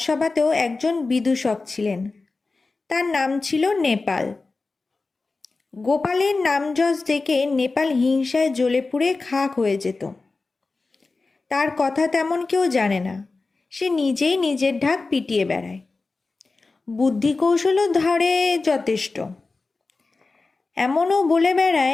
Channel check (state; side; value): quieter; right; 3.7 dB